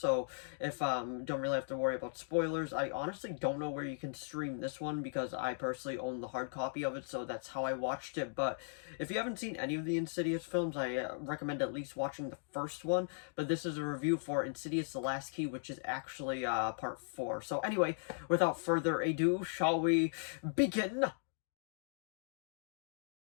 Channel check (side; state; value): right; silent; digital silence